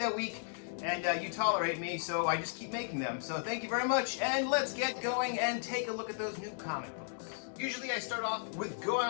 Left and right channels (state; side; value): silent; right; digital silence